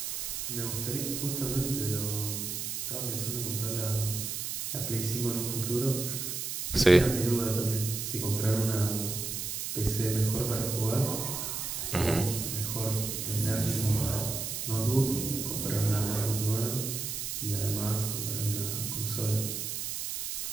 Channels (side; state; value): right; noise; hiss, 3 dB below the sound